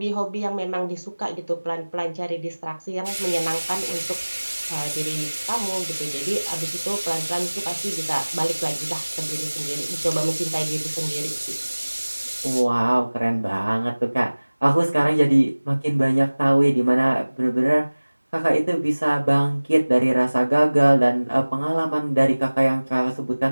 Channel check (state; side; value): inverted; both; correlation -1.00